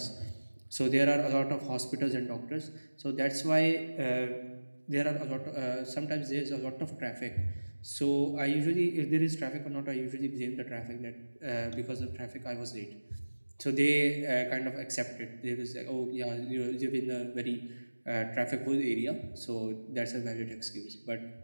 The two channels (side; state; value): both; inverted; correlation -1.00